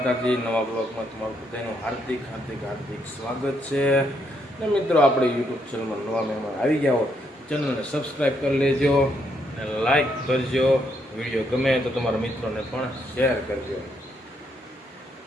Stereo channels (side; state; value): both; normal; correlation 0.75